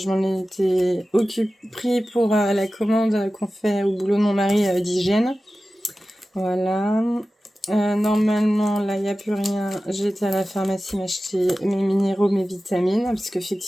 m'en ai été pris pour la commande qu'on fait au boulot de mon mari d'hygiène. Voilà. Normalement, là, il n'y a plus rien. J'ai été à la pharmacie m'acheter mes minéraux, mes vitamines, parce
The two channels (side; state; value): both; normal; correlation 0.95